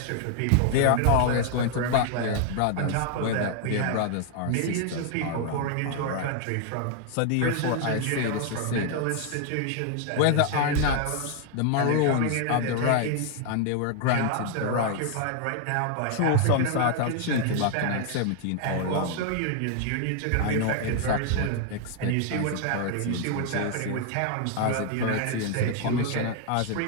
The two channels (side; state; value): both; different; correlation 0.00